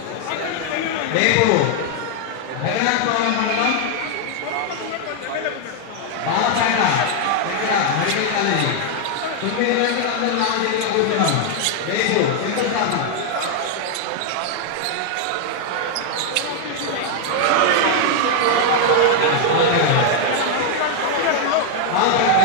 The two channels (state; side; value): different; both; correlation 0.00